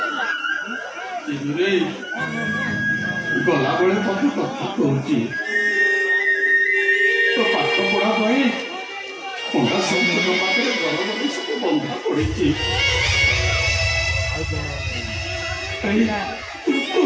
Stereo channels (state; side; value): identical; both; correlation 1.00